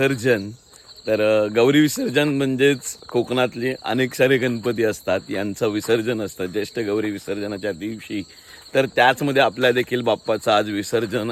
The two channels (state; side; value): identical; both; correlation 1.00